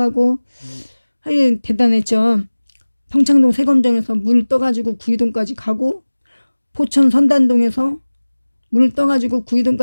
하여튼 대단했죠. 평창동 세검정에서 물 떠가지고 구이동까지 가고, 포천 선단동에서 물 떠가지고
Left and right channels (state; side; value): inverted; both; correlation -1.00